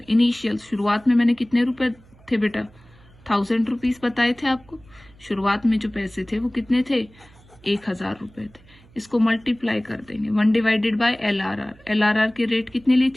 इनिशियल शुरुआत में मैंने कितने रुपए थे बेटा, 1000 रुपीज बताए थे आपको। शुरुआत में जो पैसे थे वो कितने थे, 1000 रुपए थे। इसको मल्टीप्लाई कर देंगे 1 डिवाइडेड बाय LRR की रेट कितनी ली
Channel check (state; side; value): noise; right; hum, 26 dB below the sound